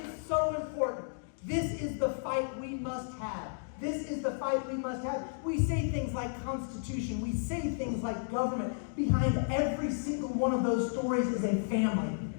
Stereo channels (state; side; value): silent; right; digital silence